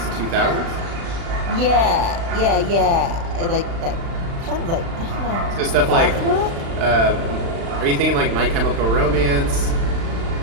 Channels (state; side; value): late; left; 36 ms